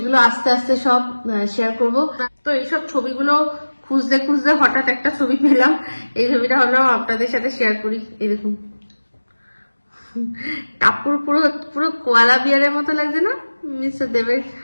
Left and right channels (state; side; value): inverted; both; correlation -1.00